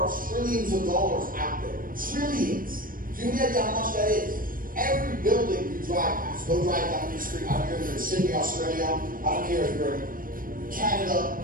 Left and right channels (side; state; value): left; late; 0.41 ms